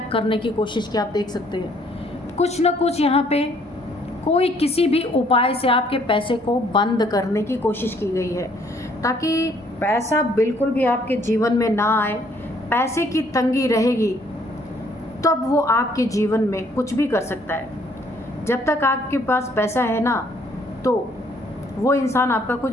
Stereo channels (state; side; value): normal; both; correlation 0.64